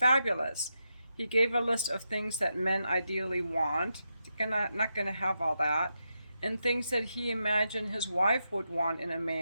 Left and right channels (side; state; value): both; inverted; correlation -0.86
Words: He gave a list of things that men ideally want. Not going to have all that. And things that he imagined his wife would want in a